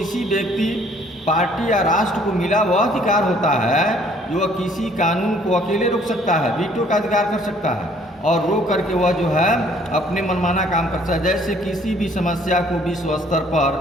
व्यक्ति, पार्टी या राष्ट्र को मिला वह अधिकार होता है जो वह किसी कानून को अकेले रोक सकता है, वीटो का अधिकार कर सकता है, और रोक करके वह जो है अपने मनमाना काम कर सकता है। जैसे किसी भी समस्या को विश्व स्तर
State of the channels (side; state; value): both; normal; correlation 0.59